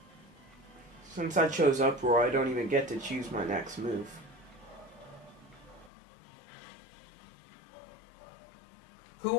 Since I chose Uproar, I don't even get to choose my next move. Who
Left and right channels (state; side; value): drops out; right; at 5.9 s